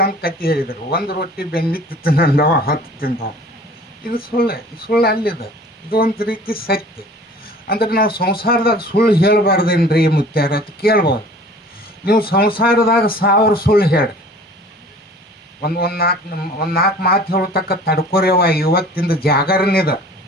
ಕತ್ತಿ ಹೇಳಿದರು, 1 ರೊಟ್ಟಿ ಬೆನ್ನಿತ್ತು ತಿಂದವ 10 ತಿಂದವ. ಇದು ಸುಳ್ಳು ಅಲ್ಲಿದೆ. ಇದು ಒಂದು ರೀತಿ ಸತ್ಯ. ಅಂದ್ರೆ ನಾವು ಸಂಸಾರದಾಗ ಸುಳ್ಳು ಹೇಳಬಾರ್ದೇನ್ರಿ ಮುತ್ಯಾರ ಅಂತ ಕೇಳ್ಬೋದು. ನೀವು ಸಂಸಾರದಾಗ 1000 ಸುಳ್ಳು ಹೇಳಿ ಒಂದು 4 ಮಾತು ಹೇಳತಕ್ಕ ತಡ್ಕೊರೇವ. ಇವತ್ತಿಂದ ಜಾಗರಣೆದ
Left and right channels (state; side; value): normal; both; correlation 0.47